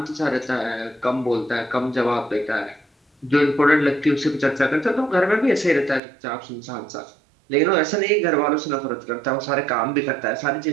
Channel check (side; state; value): left; drops out; at 6.0 s